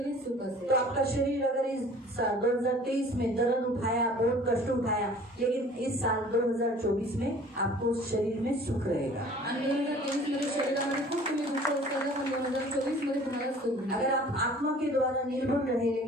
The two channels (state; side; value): normal; both; correlation 0.49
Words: सुख असेल. तो आपका शरीर अगर इस 2023 में दर्द उठाया, बहुत कष्ट उठाया, लेकिन इस साल 2024 में आपको शरीर में सुख रहेगा। आणि 2023 मध्ये शरीरामध्ये खूप तुम्ही दुःख उचललं पण 2024 मध्ये तुम्हाला सुख मिळेल. अगर आप आत्मा के द्वारा निर्भर रहे,